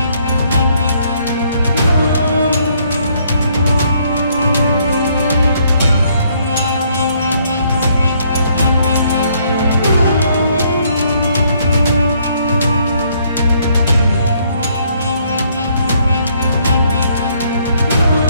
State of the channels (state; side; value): inverted; both; correlation -0.68